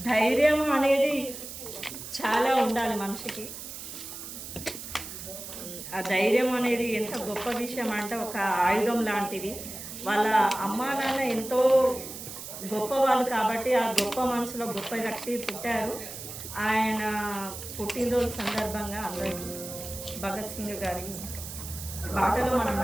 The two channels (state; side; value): noise; right; hiss, 10 dB below the sound